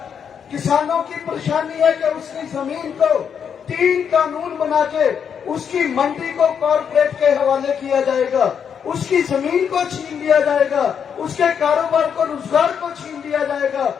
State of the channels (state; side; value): quieter; right; 7.5 dB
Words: किसानों की परेशानी है कि उसकी जमीन को 3 कानून बना के उसकी मंडी को कॉर्पोरेट के हवाले किया जाएगा, उसकी जमीन को छीन लिया जाएगा, उसके कारोबार को, रोजगार को छीन लिया जाएगा।